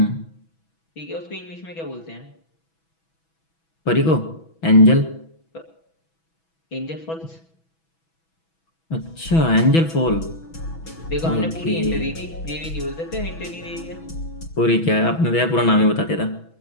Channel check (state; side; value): late; right; 6.1 ms